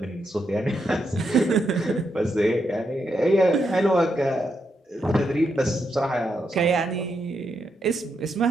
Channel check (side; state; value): both; normal; correlation 0.82